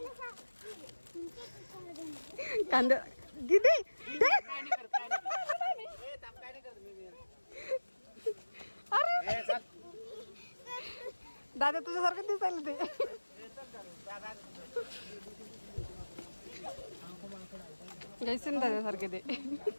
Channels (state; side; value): inverted; both; correlation -1.00